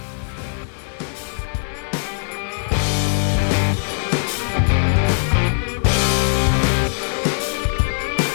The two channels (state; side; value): silent; right; digital silence